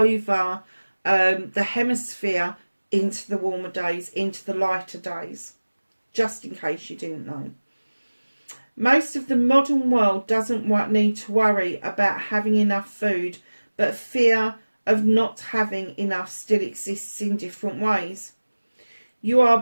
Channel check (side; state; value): both; inverted; correlation -1.00